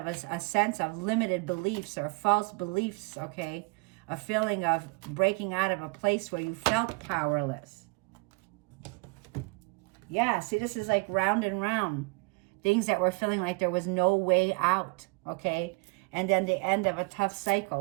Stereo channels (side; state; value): left; quieter; 29.2 dB